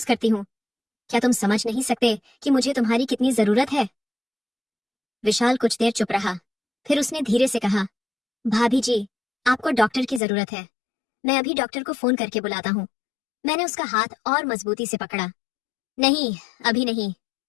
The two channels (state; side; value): drops out; right; at 10.2 s